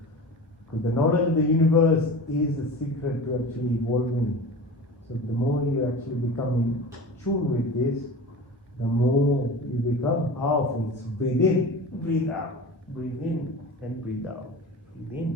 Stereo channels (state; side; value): normal; both; correlation 0.34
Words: Because the knowledge of the universe is the secret to actually evolving. So the more you actually become in tune with this, the more you become powerful. So breathe in, breathe out, breathe in and breathe out. Breathe